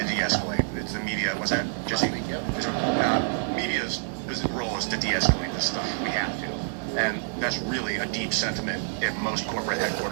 de-escalate. It's the media. Was that Jesse? Media's role is to de-escalate this stuff. We have to, and that's really a deep sentiment at most corporate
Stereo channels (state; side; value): silent; left; digital silence